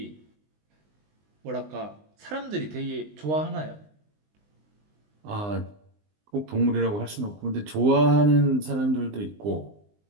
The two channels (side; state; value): left; late; 20 ms